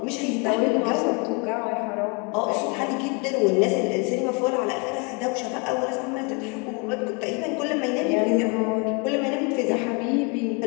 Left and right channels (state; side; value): quieter; right; 32.4 dB